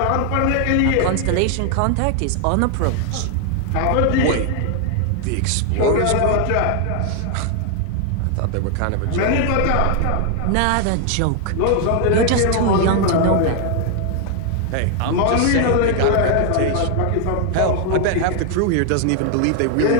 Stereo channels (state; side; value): different; both; correlation 0.00